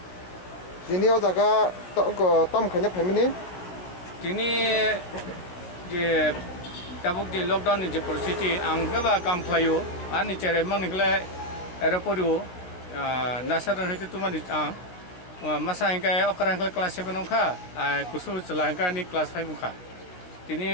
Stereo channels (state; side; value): late; right; 17 ms